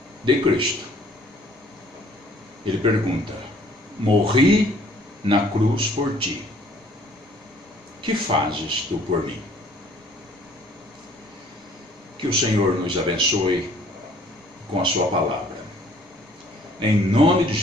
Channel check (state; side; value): normal; both; correlation 0.58